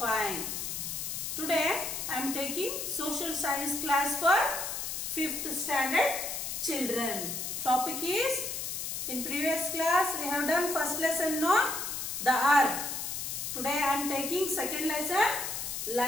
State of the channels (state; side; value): noise; left; hiss, 4 dB below the sound